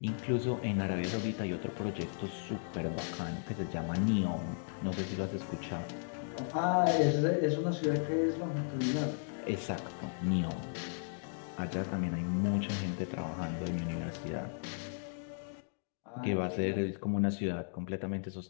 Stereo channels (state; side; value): silent; right; digital silence